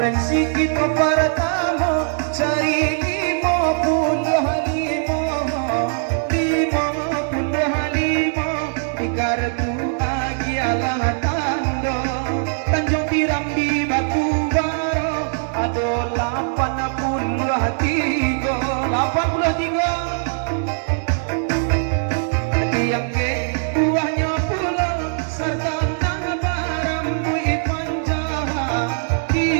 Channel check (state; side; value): silent; left; 65 dB below the other